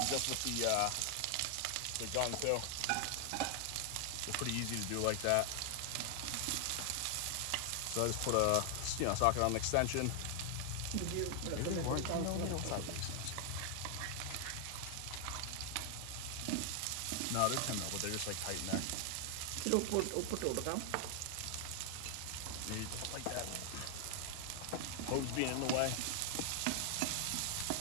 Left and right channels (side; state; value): both; different; correlation 0.00